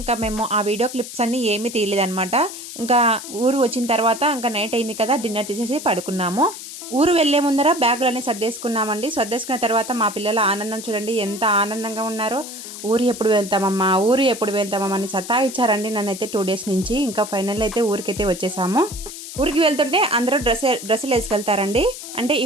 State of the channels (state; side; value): noise; left; hiss, 11 dB below the sound